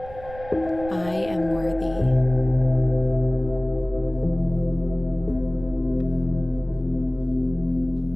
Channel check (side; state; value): right; noise; rumble, 16 dB below the sound